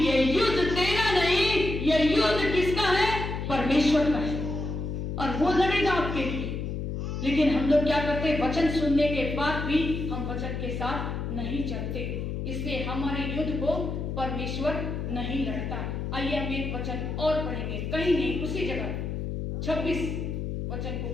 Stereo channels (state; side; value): noise; left; hum, 4 dB below the sound